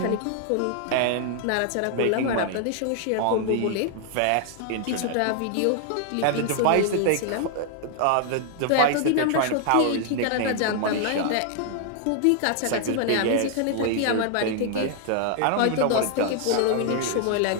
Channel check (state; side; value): different; both; correlation 0.00